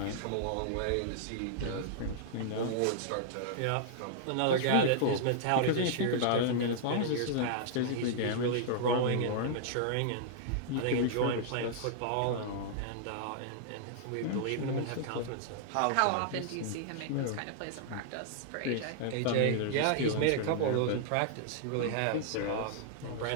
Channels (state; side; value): different; both; correlation -0.01